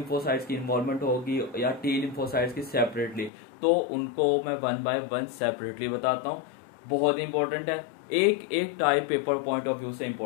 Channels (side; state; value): right; drops out; at 3.3 s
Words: की इन्वॉल्वमेंट होगी या टी लिम्फोसाइट्स की सेपरेटली, तो उनको मैं 1 बाय 1 सेपरेटली बताता हूँ। बहुत इंपॉर्टेंट है, एक type paper point of view से